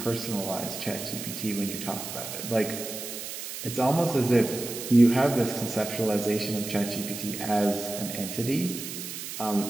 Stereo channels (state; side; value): noise; right; hiss, 8 dB below the sound